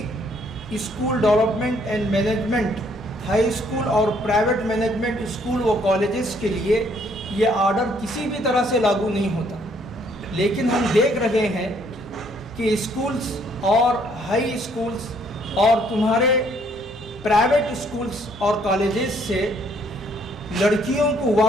school development and management high school اور پرائیویٹ مینجمنٹ اسکول و کالجز کے لیے یہ آرڈر کسی بھی طرح سے لاگو نہیں ہوتا۔ لیکن ہم دیکھ رہے ہیں کہ اسکولز اور ہائی اسکولز اور تمہارے پرائیویٹ اسکولز اور کالجز سے لڑکیوں کو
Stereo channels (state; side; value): normal; both; correlation 0.66